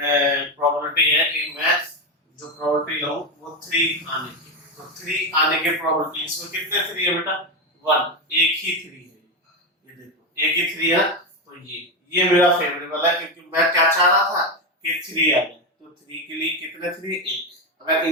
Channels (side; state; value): both; normal; correlation 0.12